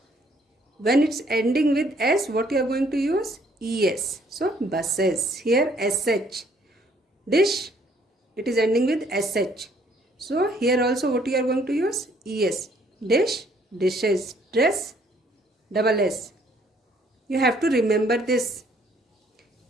when it's ending with S, what you are going to use? ES. So, buses. Here, SH. Dish, it is ending with SH. So, here also what you are going to use? ES. Dish, dishes. Dress, double S. You have to remember this.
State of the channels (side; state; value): both; normal; correlation 0.64